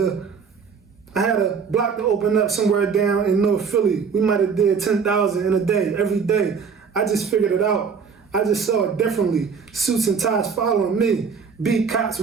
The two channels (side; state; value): left; quieter; 5.9 dB